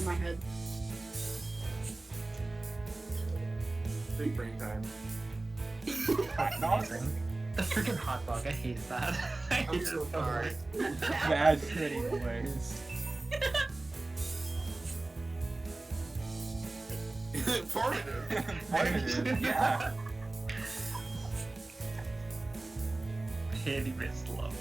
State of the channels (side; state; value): left; quieter; 3.0 dB